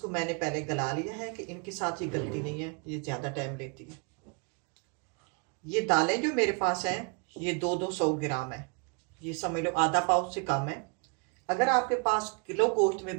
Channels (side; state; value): left; quieter; 35.3 dB